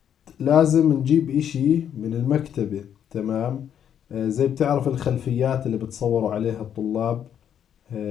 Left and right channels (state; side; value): quieter; right; 9.2 dB